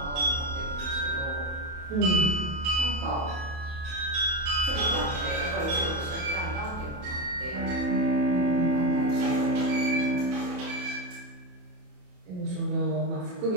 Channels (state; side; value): late; left; 28 ms